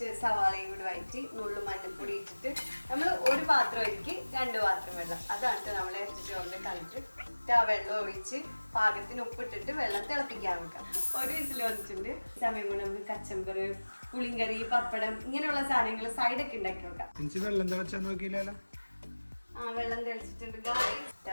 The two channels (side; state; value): both; inverted; correlation -1.00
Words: സവാളയും കൂടി വഴറ്റി നുള്ളു മഞ്ഞൾപ്പൊടി ഇട്ടിട്ട് നമ്മൾ ഒരു പാത്രം ഒഴുക്കി 2 പാത്രം വെള്ളം. അതാണ് നമ്മൾ ഇറച്ചി ചോറിന്റെ കളിട്ട് ആ വെള്ളം ഒഴിച്ച് പാകത്തിന് ഉപ്പിട്ടിട്ട് വെള്ളം തിളപ്പിക്കാൻ വെക്കാം. ഒരു വിസിൽ വന്നിട്ടുണ്ട്. സമയം കൊണ്ട് നമുക്ക് കച്ചമ്പർ, പുളിങ്കറി, പപ്പടം ഇങ്ങനെയുള്ള സാധനങ്ങൾ സൈഡൊക്കെ ഉണ്ടാക്കി വെക്കാം. വെള്ളം തിളച്ചാൽ നോക്കിയില്ലല്ലോ. വെള്ളം തിളച്ചിട്ടുണ്ട്.